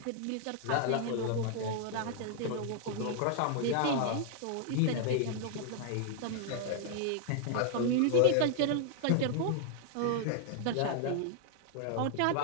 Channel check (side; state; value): both; different; correlation 0.00